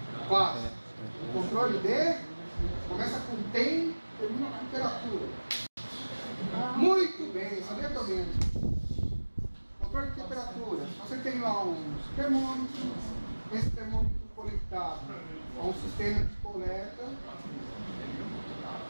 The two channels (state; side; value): inverted; both; correlation -1.00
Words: classe. Um controle de começa com tem, termina com temperatura. Muito bem, sabia também. Controle de temperatura. Você tem lá um termômetro, esse termômetro conectado a um sistema de coleta.